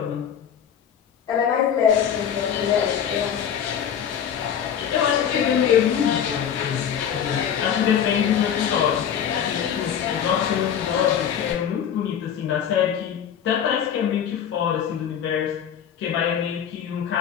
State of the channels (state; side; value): quieter; right; 8.6 dB